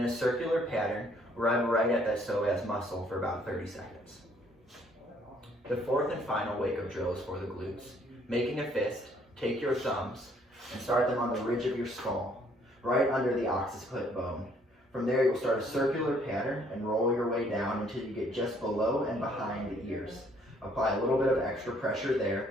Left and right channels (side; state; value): both; normal; correlation 0.64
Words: a circular pattern, rub right at that psoas muscle for about 30 seconds. The fourth and final wake-up drill is for the glutes. Making a fist, take your thumbs and start them on the ridge of your skull, right under the occiput bone. From there, you'll start a circular pattern and roll your way down until you get just below and behind the ears. Apply a little bit of extra pressure